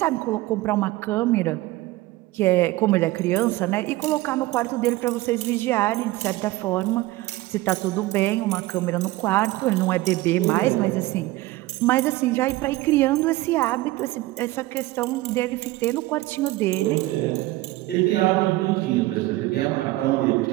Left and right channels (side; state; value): left; quieter; 18.4 dB